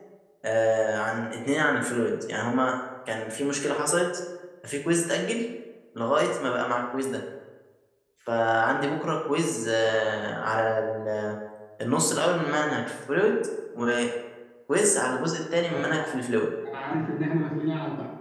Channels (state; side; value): identical; both; correlation 1.00